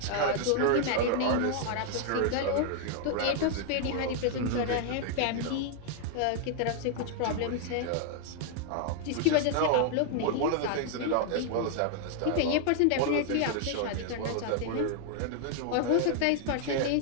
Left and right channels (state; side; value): different; both; correlation 0.00